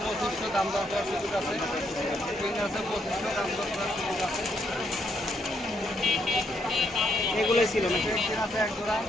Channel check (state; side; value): normal; both; correlation 0.75